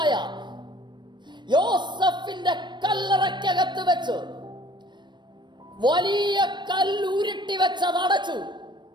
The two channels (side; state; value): left; late; 0.22 ms